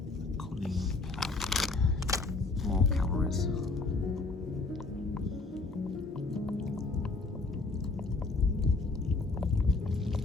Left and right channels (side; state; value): right; quieter; 3.6 dB